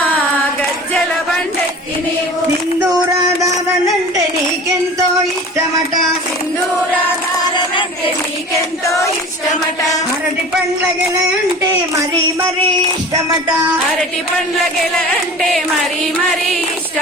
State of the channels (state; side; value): normal; both; correlation 0.39